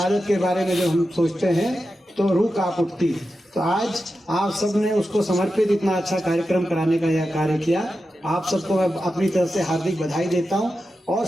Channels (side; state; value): both; normal; correlation 0.91